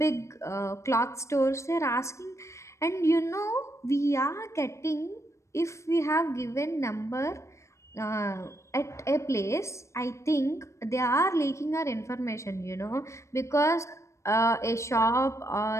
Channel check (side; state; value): right; late; 0.14 ms